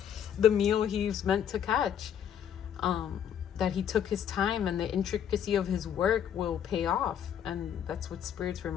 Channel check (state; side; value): quieter; right; 9.1 dB